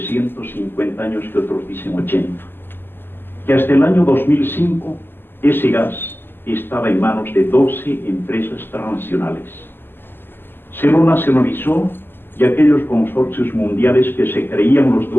años que otros dicen 80, que hasta el año 2005 ese gas estaba en manos de 12 empresas transnacionales. Se lo nacionalizó y aquellos consorcios mundiales que se creían los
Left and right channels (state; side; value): late; right; 0.099 ms